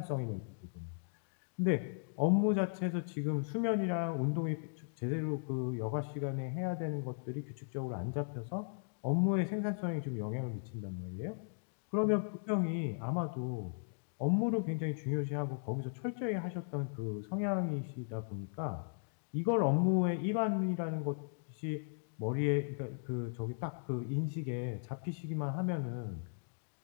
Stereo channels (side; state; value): right; silent; digital silence